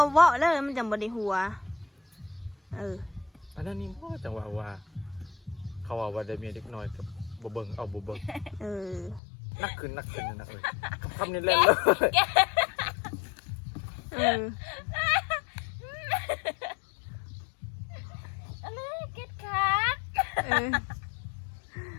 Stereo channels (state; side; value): drops out; right; at 9.2 s